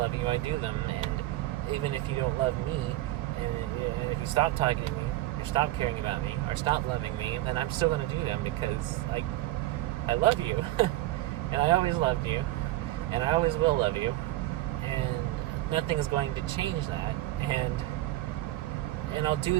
you, I do them. And even if you don't love me, and if you stop talking to me, or stop caring about me, or stop loving me, then I'm still going to do them, because I love you. And I always loved you, and I always will love you, and nothing's going to change that. And I'll do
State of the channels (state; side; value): quieter; left; 16.5 dB